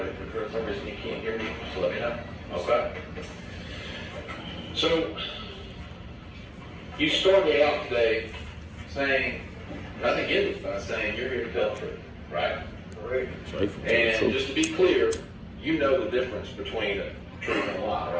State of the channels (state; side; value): identical; both; correlation 1.00